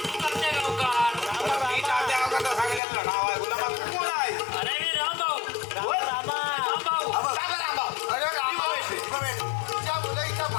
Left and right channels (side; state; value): right; drops out; at 2.8 s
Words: मी तात्या गावचा सांगितलेलं नाव आहे. गुलाबा तू कोण आहे. तुझ्या मुलं इथं